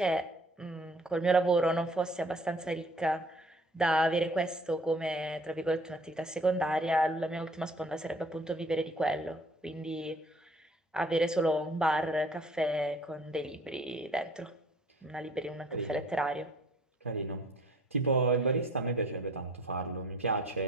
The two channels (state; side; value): normal; both; correlation 0.55